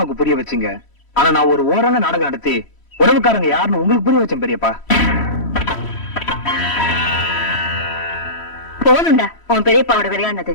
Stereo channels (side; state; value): right; late; 3.1 ms